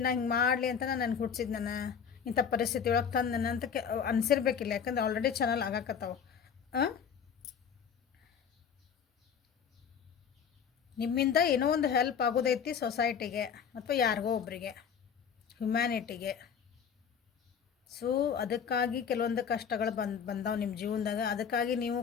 ನಾ ಹಿಂಗೆ ಮಾಡಲಿ ಅಂತ ನನಗೆ ಹುಟ್ಟಿಸಿದ್, ನಾನು ಇಂಥ ಪರಿಸ್ಥಿತಿ ಒಳಗೆ ತಂದು ನನ್ನ ಅಂತ ಅನಿಸಿರ್ಬೇಕಿಲ್ಲ. ಯಾಕಂದ್ರೆ ಆಲ್ರೆಡಿ ಚಾನಲ್ ಆಗಾಕತ್ತಾವ. ನಿಮ್ಮಿಂದ ಏನೋ ಒಂದು ಹೆಲ್ಪ್ ಆಗೋದೈತಿ ಸೊಸೈಟಿಗೆ ಅಥವಾ ಯಾರಿಗೋ ಒಬ್ಬರಿಗೆ, ಹ್ಯುಮ್ಯಾನಿಟಿಗೆ. ಸೊ ಅದಕ್ಕಾಗಿ ಕೆಲವೊಂದು ಕಷ್ಟಗಳು ಬಂದಾವೆ ನಿಮ್ಮ ಜೀವನದಾಗ. ಅದಕ್ಕಾಗಿ ನೀವು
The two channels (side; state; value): right; quieter; 7.2 dB